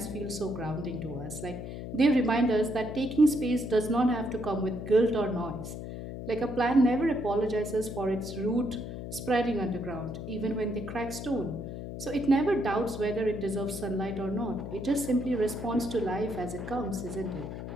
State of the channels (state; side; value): noise; left; hum, 8 dB below the sound